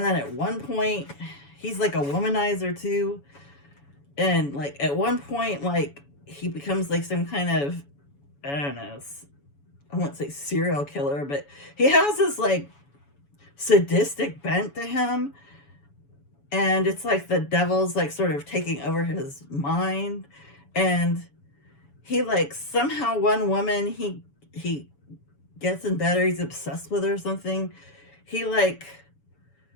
then at one point, he's like a womanizer too. And like at one point, like he becomes like some kind of, I don't know, I won't say serial killer, but he has this like sadistic bent to him. And it's like the devil's like sort of taking over his mind. And he like somehow one woman he gets in bed, or he's obsessed with her or something. He like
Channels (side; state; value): right; late; 7.1 ms